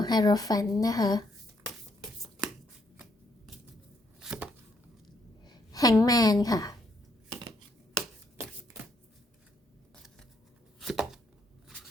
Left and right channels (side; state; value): both; normal; correlation 0.72